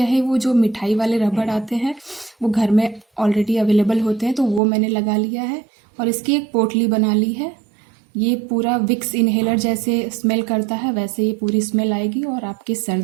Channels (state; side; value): drops out; left; at 4.6 s